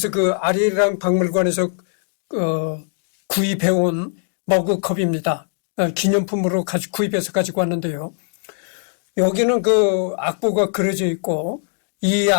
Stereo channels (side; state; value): right; silent; digital silence